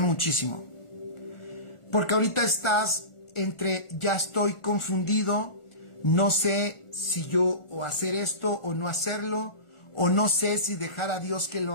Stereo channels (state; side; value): late; right; 1.4 ms